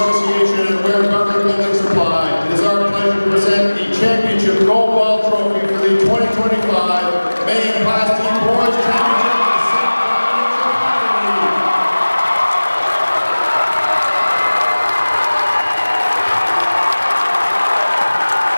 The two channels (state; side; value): inverted; both; correlation -1.00